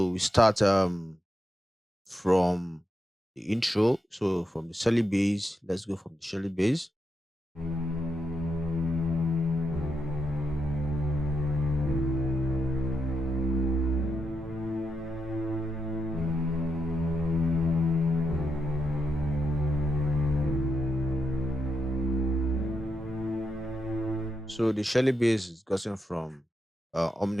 we start from the intro. So from the Shelly base, let's go from the Shelly base. So the Shelly base is gotten from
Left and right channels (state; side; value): normal; both; correlation 0.84